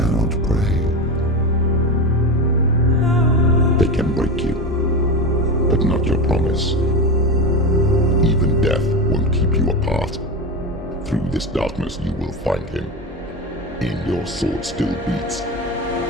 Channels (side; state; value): both; normal; correlation 0.20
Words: pray. They can break you, but not your promise. Even death won't keep you apart. Through this darkness you will find him. In your sword still beats